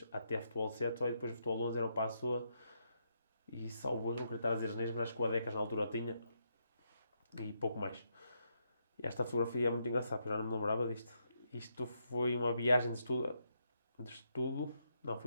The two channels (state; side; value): inverted; both; correlation -0.79